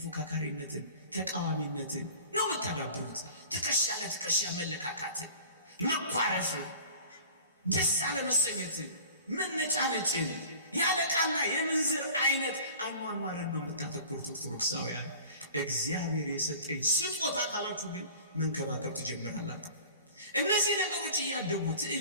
ተቃዋሚነትን ነው የምታዳብሩት። ትከሻ ለትከሻ መለካካትን፣ መኳረፍን፣ ደስ አለመሰኘትን፣ መነጫነጭን፣ ያለቃና የምንዝር አይነት አኗኗርን ነው የምታተኩሩት ኦርቶዶክሳውያን። እግዚአብሔር የሰጠኝ ስጦታ ካላችሁ ግን መንከባከብ ትጀምራላችሁ። እነዚህ ነገሮች እያደጉ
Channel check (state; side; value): inverted; both; correlation -0.43